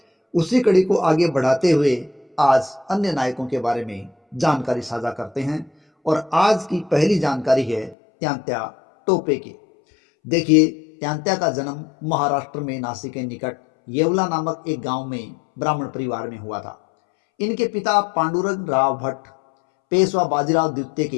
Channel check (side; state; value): right; drops out; at 8.0 s